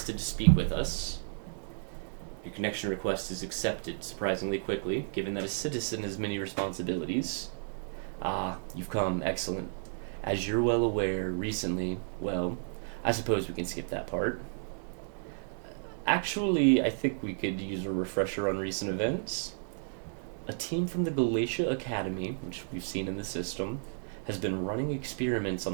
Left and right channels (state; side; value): silent; left; digital silence